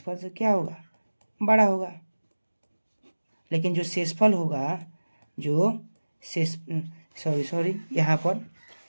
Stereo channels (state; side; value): inverted; both; correlation -1.00